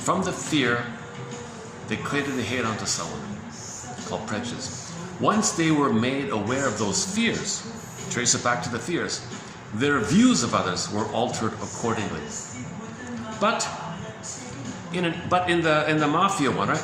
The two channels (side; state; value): both; identical; correlation 1.00